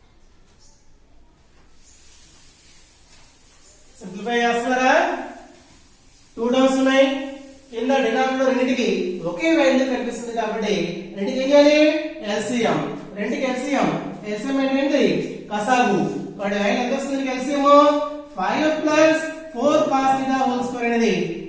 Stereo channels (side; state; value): both; identical; correlation 1.00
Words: Simplify చేస్తారా? 2 టర్మ్స్ ఉన్నాయి, కింద డినామినేటర్ రెండింటికి ఒకే వాల్యూ కనిపిస్తుంది కాబట్టి రెండింటికి ఏం చేయాలి LCM. రెండింటికి LCM అంటే ఏంటి కసాగు. వాడి వాల్యూ ఎంత వస్తుంది LCM 5 + 4 cos θ హోల్ స్క్వేర్ అనేది